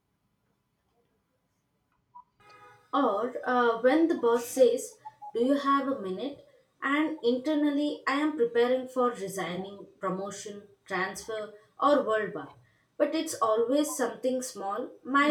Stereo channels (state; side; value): identical; both; correlation 1.00